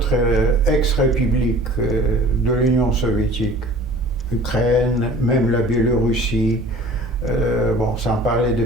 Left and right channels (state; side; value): normal; both; correlation 0.46